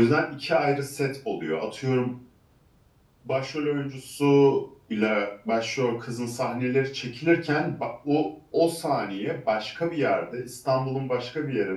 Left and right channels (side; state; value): both; identical; correlation 1.00